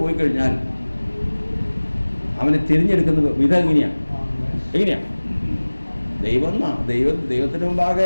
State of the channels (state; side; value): inverted; both; correlation -1.00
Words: പോയി കഴിഞ്ഞാൽ അവനെ തിരിഞ്ഞെടുക്കുന്ന വിധം എങ്ങനെയാണ്?